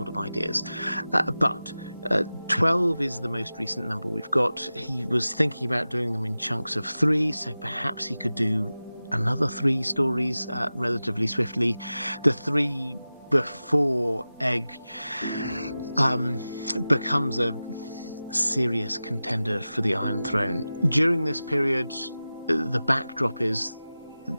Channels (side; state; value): both; inverted; correlation -0.95